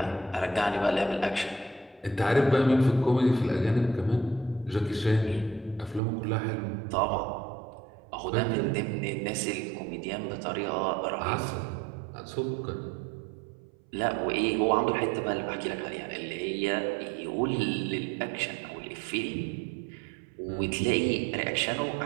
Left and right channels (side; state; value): left; drops out; at 6.0 s